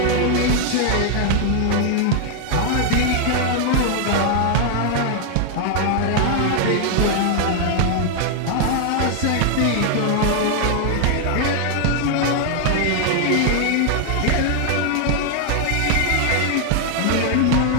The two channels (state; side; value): different; both; correlation 0.00